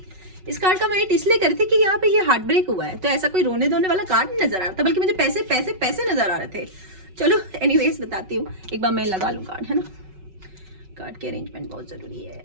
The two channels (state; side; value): late; left; 5.3 ms